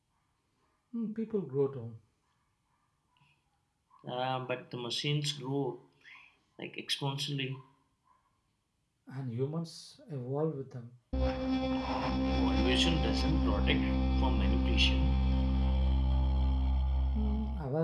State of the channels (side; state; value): both; identical; correlation 1.00